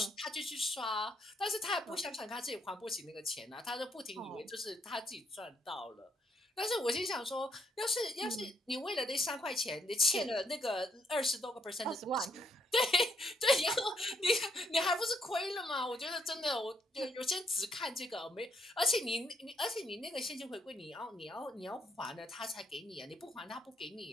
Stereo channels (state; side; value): normal; both; correlation 0.72